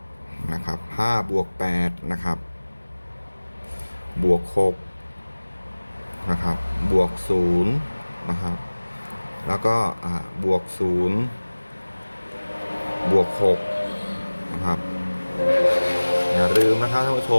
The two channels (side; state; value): both; inverted; correlation -1.00